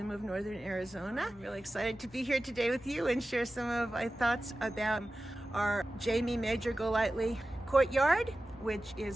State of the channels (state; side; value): normal; both; correlation 0.95